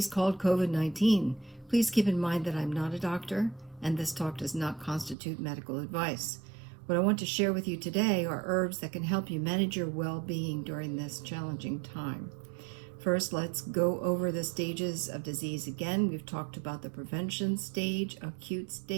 called COVID-19. Please keep in mind that I'm not a doctor, and this talk does not constitute medical advice. What I want to share with you today are herbs that can help you manage your well-being during this challenging time. First, let's go over the stages of disease again. We've talked about the prevention stage, acute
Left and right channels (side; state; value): left; drops out; at 5.2 s